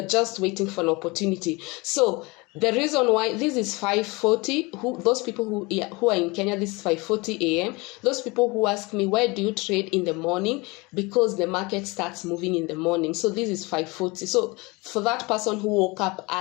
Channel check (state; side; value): quieter; right; 25.4 dB